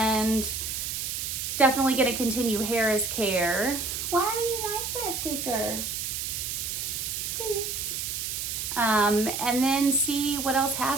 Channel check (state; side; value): noise; right; hiss, 3 dB below the sound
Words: definitely going to continue Harris care. Why are you like that, Squeaker? Squeaks. And then see what else